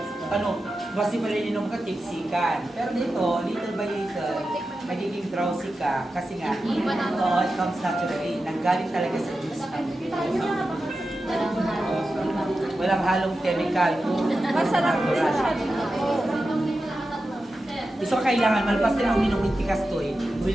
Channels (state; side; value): normal; both; correlation 0.91